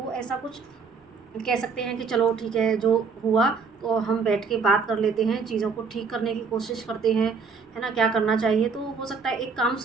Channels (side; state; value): left; quieter; 5.1 dB